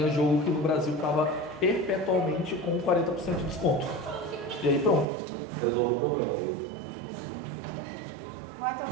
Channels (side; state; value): left; drops out; at 5.1 s